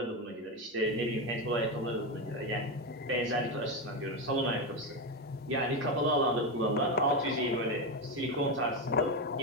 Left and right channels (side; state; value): both; normal; correlation 0.12